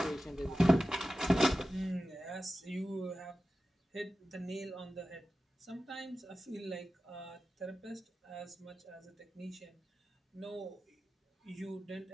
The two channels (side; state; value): both; normal; correlation 0.93